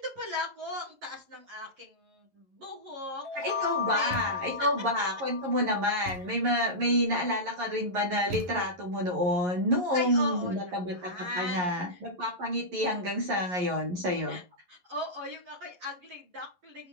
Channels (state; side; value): late; left; 11 ms